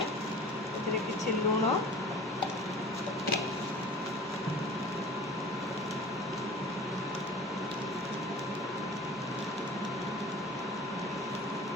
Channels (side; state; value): both; normal; correlation 0.41